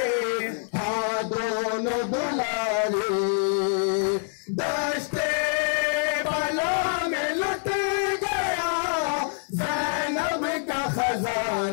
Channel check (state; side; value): silent; right; 60 dB below the other